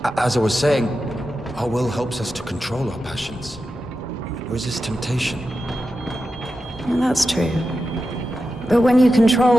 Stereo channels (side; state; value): both; normal; correlation 0.91